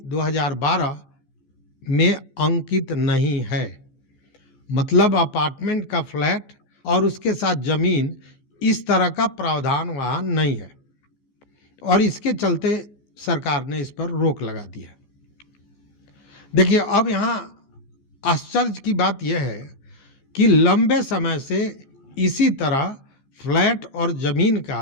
2012 में अंकित नहीं है। मतलब अपार्टमेंट का फ्लैट और उसके साथ ज़मीन, इस तरह का प्रावधान वहाँ नहीं है और इसके चलते सरकार ने इस पर रोक लगा दी है। देखिए, अब यहाँ आश्चर्य की बात यह है कि लंबे समय से इसी तरह फ्लैट और ज़मीन का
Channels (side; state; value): right; late; 15 ms